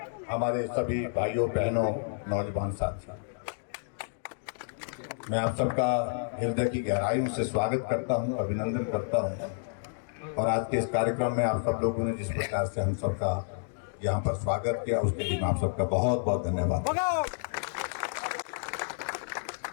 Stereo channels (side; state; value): right; silent; digital silence